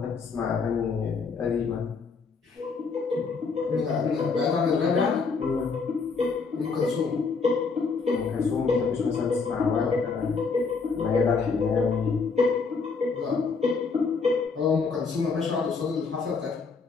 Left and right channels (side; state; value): right; quieter; 4.8 dB